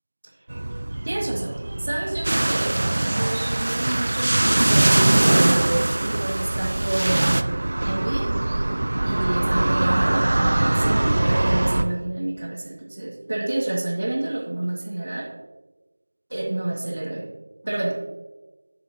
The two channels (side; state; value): both; inverted; correlation -1.00